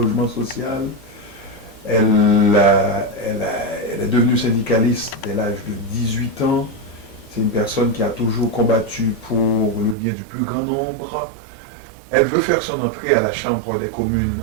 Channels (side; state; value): left; drops out; at 10.0 s